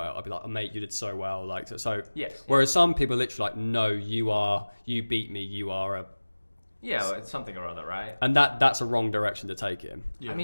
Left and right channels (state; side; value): inverted; both; correlation -1.00